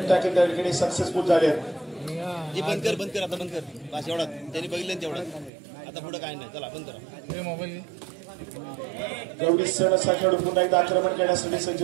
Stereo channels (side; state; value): left; drops out; at 5.5 s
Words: टॅकल त्या ठिकाणी सक्सेसफुल झाले. बंद कर आता बंद कर बस एवढा त्यांनी बघितलं तेवढं. आता पुढे काय नाही, चला बंद करा मोबाईल. गवडी सण असा खेळाडू पुन्हा एकदा आक्रमण करण्यासाठी सज्ज